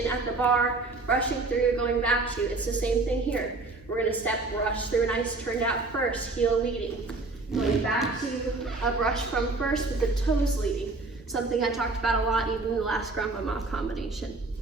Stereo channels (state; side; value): quieter; left; 3.5 dB